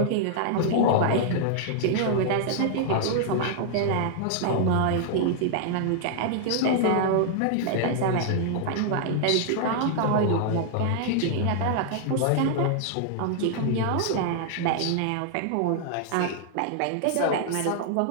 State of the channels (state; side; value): different; both; correlation -0.01